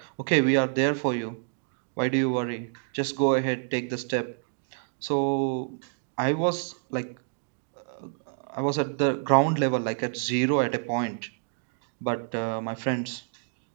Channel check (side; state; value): left; silent; digital silence